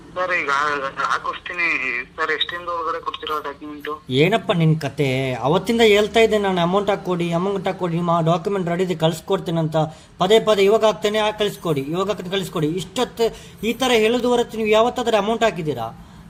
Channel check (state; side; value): identical; both; correlation 1.00